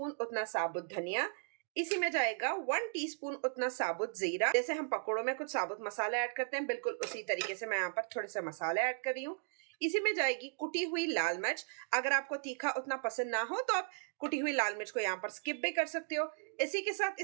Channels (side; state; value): left; silent; digital silence